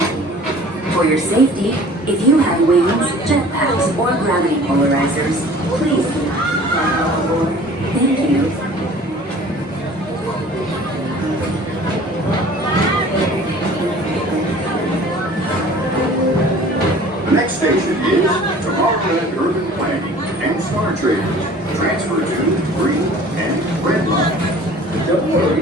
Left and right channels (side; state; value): both; normal; correlation 0.47